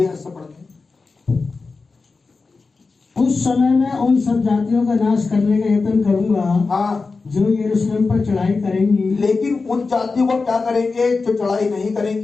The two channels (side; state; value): right; quieter; 4.2 dB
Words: ऐसा पढ़ते हैं। उस समय मैं उन सब जातियों का नाश करने का यत्न करूंगा, हाँ, जो यरूशलेम पर चढ़ाई करेंगी। लेकिन उन जातियों को क्या करेंगे जो चढ़ाई नहीं